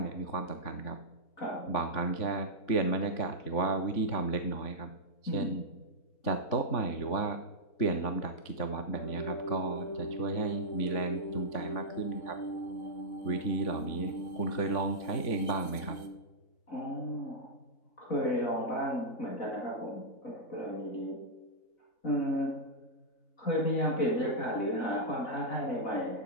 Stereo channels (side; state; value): right; late; 3.7 ms